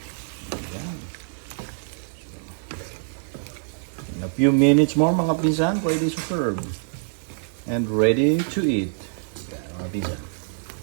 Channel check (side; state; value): left; silent; 62 dB below the other